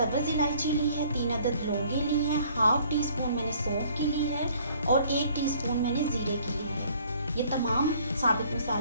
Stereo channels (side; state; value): both; inverted; correlation -0.58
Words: इलायची ली है, 3 अदद लौंगे ली हैं, 1/2 टीस्पून मैंने सौंफ की ली है और 1 टीस्पून मैंने ज़ीरे की ली है। ये तमाम साबित